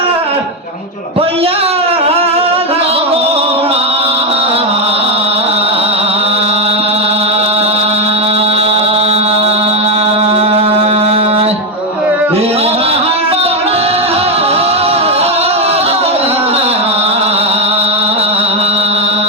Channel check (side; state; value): both; normal; correlation 0.06